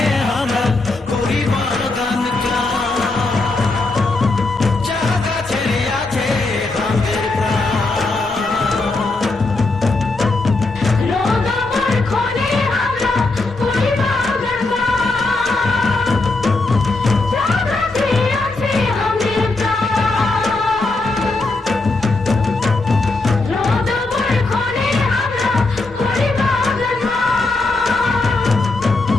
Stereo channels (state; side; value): quieter; right; 3.3 dB